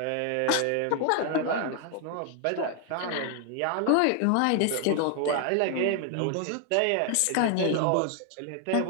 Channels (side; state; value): both; different; correlation 0.00